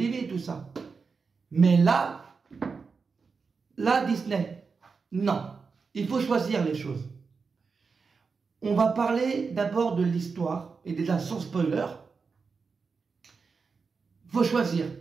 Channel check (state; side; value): quieter; left; 5.0 dB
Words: tout ça. Mais là, Disney, non. Il faut choisir les choses. On va parler d'abord de l'histoire, et déjà sans spoiler. Il faut choisir.